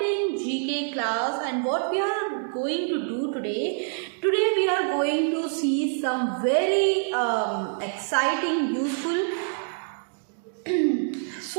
GK class, and what we are going to do today we are going to see some very exciting, useful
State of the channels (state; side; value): silent; left; 61 dB below the other